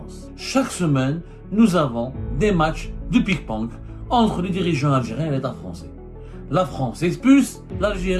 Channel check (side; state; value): both; identical; correlation 1.00